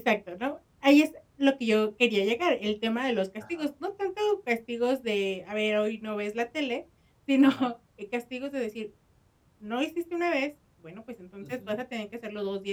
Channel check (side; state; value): both; identical; correlation 1.00